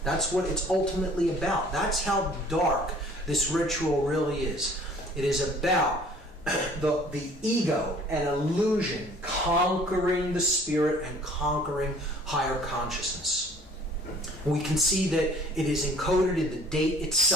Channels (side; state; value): both; normal; correlation 0.53